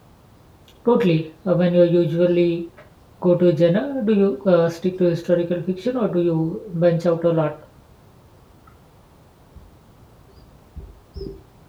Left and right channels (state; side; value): identical; both; correlation 1.00